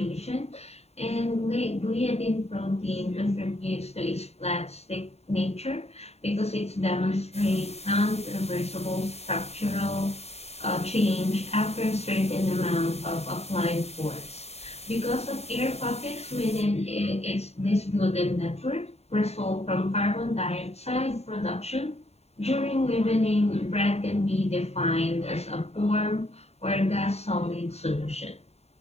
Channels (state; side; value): late; right; 0.30 ms